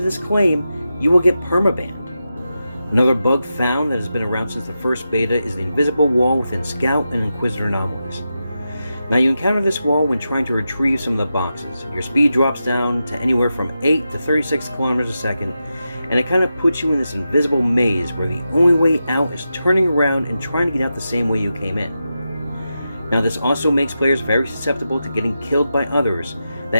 this claim, you will get permabanned. Another bug found that has been around since the first beta is the invisible wall within Scout and Inquisitor anomalies. Now you encounter this wall when trying to retrieve some of the boxes. Your speed drops down to anywhere from 8 to 36 kilometers a second, and it kind of puts you in this invisible maze where the only way out is turning around and trying to get out the same way you came in. Now this also makes players very susceptible to getting killed by others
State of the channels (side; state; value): both; inverted; correlation -0.89